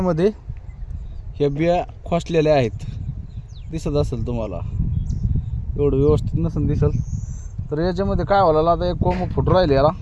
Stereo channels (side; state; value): both; identical; correlation 1.00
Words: ह्या बिया खोसलेल्या आहेत, दिसत असेल तुम्हाला, एवढं व्यवस्थित नसेल दिसल. तर याच्यामध्ये काय व्हायला, आता एक कोंब फुटू राहिले याला.